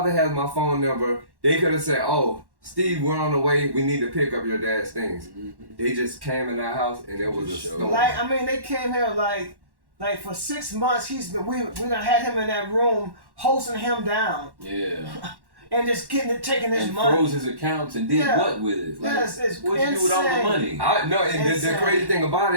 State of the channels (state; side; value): late; left; 1.1 ms